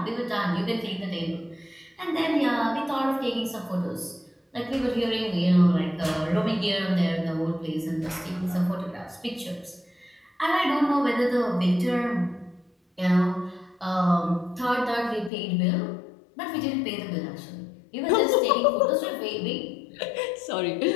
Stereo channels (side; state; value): right; drops out; at 15.3 s